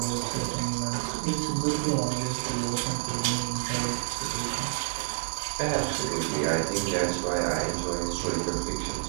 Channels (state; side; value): silent; left; 59 dB below the other